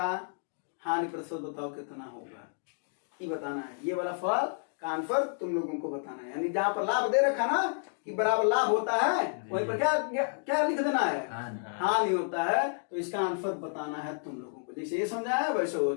हानि प्रतिशत बताओ कितना होगा, ये बताना है। ये वाला फल का आंसर तुम लोगों को बताना है, यानी जहां पर लाभ दे रखा ना कि बराबर लाभ होता है वहीं पर क्या लिख देना है, हानि होता है। तो इसका आंसर बताना है तुम लोगों को, जैसे ये समझाया है वैसे हो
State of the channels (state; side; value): silent; right; digital silence